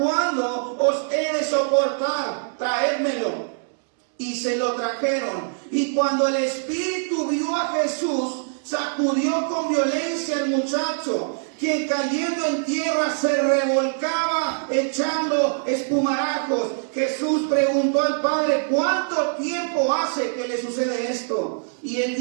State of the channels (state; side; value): silent; left; digital silence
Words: os he de soportar? Traédmelo. Y se lo trajeron. Y cuando el espíritu vio a Jesús, sacudió con violencia al muchacho, que cayendo en tierra se revolcaba echando espumarajos. Jesús preguntó al padre: ¿cuánto tiempo hace que le sucede esto? Y él